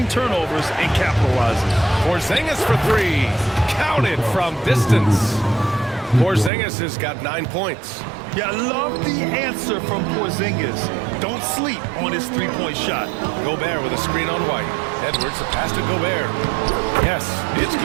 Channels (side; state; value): left; drops out; at 6.5 s